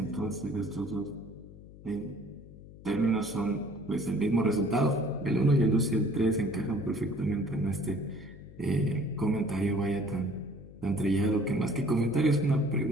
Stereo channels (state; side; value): noise; left; hum, 18 dB below the sound